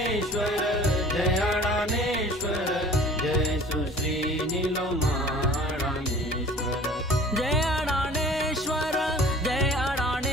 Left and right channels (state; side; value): normal; both; correlation 0.47